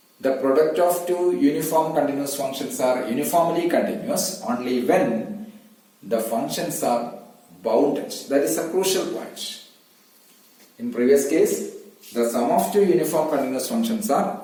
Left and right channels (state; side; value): identical; both; correlation 1.00